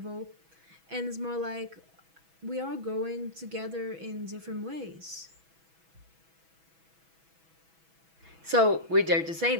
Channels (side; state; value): left; late; 6.1 ms